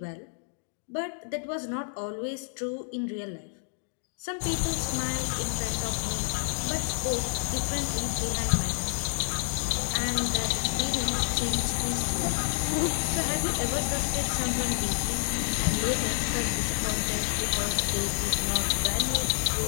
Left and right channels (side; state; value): right; silent; digital silence